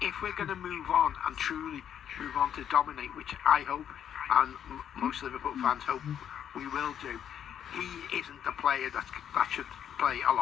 if we're going to move on and truly move on to dominate, which I hope, and most Liverpool fans hope we will do, he isn't the player that should play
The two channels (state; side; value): quieter; right; 9.3 dB